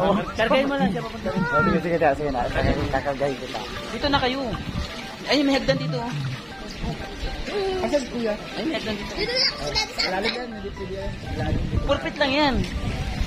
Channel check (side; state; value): both; identical; correlation 1.00